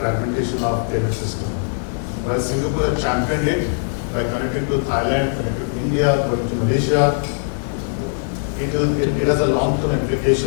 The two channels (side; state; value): right; silent; digital silence